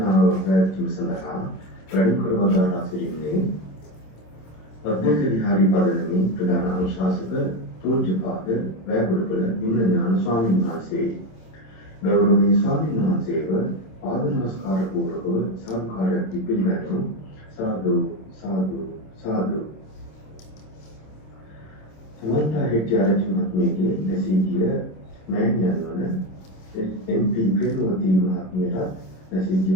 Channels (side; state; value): right; late; 26 ms